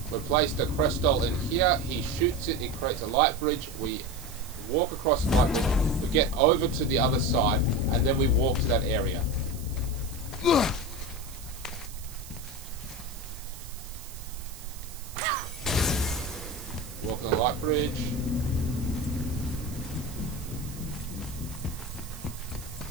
We place the crystal in here, he shoots it, it creates a light bridge, we walk across the light bridge, we get over to the other side, and then we walk to that area. Walk on the light bridge.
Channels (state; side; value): noise; right; hiss, 16 dB below the sound